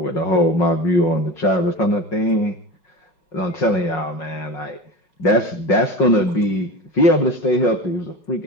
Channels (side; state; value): right; late; 5.5 ms